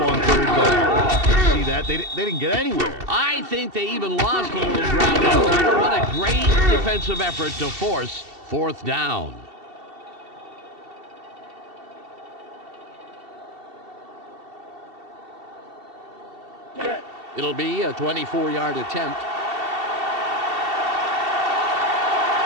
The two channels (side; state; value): left; late; 2.7 ms